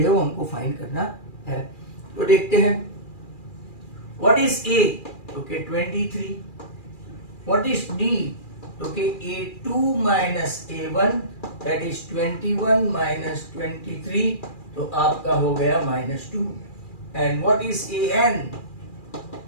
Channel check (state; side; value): late; right; 2.4 ms